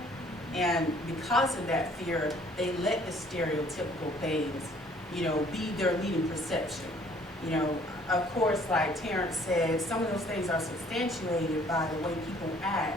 And because of that fear, they let the stereotypical things, you know, be their leading perception. You know, of course, like Terrence said, some of those things are substantiated by the way people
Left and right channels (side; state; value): both; normal; correlation 0.58